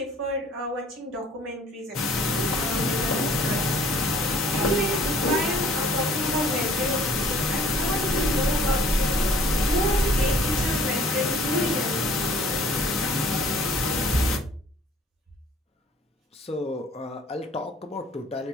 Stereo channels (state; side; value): normal; both; correlation 0.54